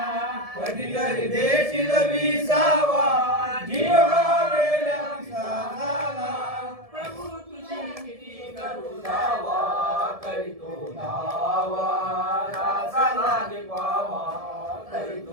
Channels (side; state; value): left; late; 1.7 ms